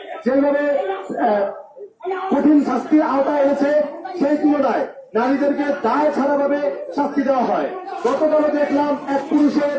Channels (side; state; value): both; identical; correlation 1.00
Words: যেভাবে কঠিন শাস্তির আওতায় এনেছে সেই তুলনায় নারীদেরকে দায় ছাড়াভাবে শাস্তি দেওয়া হয়। গতকালও দেখলাম এক